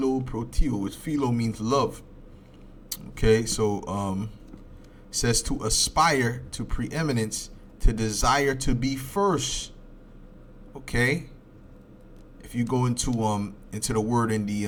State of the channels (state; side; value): identical; both; correlation 1.00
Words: Philo means love. Okay, so says to aspire to preeminence, to desire to be first. Okay, if you go into the word in